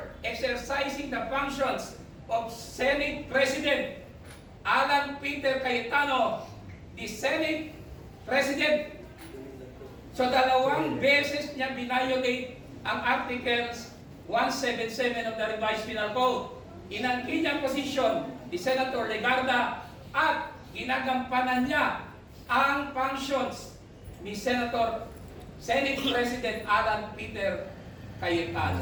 exercising the functions of Senate President Alan Peter Cayetano, the Senate President. So dalawang beses niya binayolate ang Articles 177 of the Revised Penal Code. Inangkin niya posisyon ni Senator Legarda at ginagampanan niya ang functions ni Senate President Alan Peter Cayetano.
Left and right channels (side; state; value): both; identical; correlation 1.00